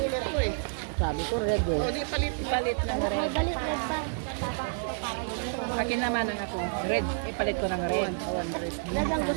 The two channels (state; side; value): silent; left; digital silence